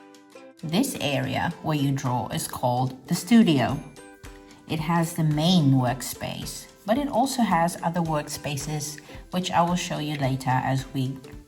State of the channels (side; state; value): both; identical; correlation 1.00